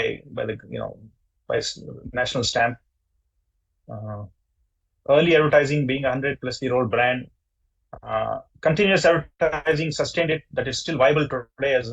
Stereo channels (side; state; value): both; identical; correlation 1.00